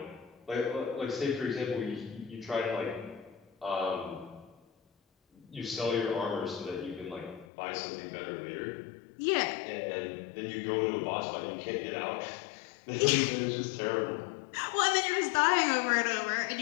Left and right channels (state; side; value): drops out; right; at 7.5 s